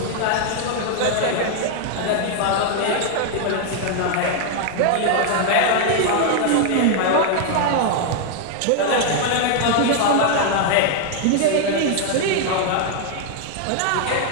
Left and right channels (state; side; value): different; both; correlation 0.00